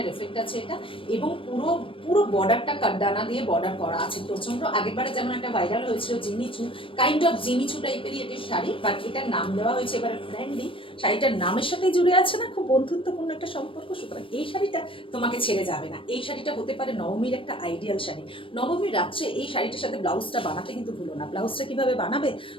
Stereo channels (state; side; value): late; right; 0.25 ms